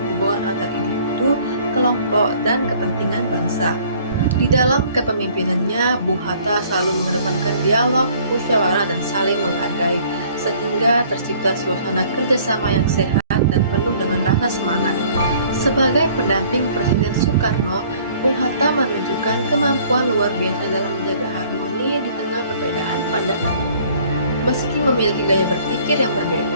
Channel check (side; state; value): both; inverted; correlation -0.56